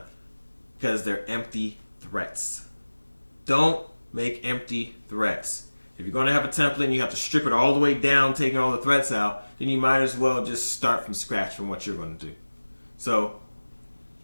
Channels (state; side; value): inverted; both; correlation -1.00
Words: because they're empty threats. Don't make empty threats. If you're going to have a template and you have to strip it all the way down, taking all the threats out, then you might as well just start from scratch from what you're going to do. So